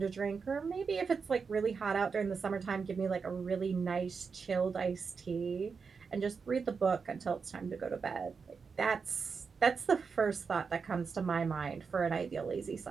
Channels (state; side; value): quieter; left; 5.4 dB